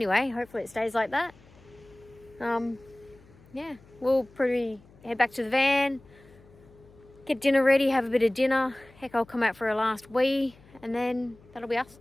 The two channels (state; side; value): noise; left; hum, 26 dB below the sound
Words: Hopefully it stays like that. Yeah, we'll probably head back to the van, get dinner ready, have a bit of dinner. Heck, I'll come out for a last wee, and then that'll be us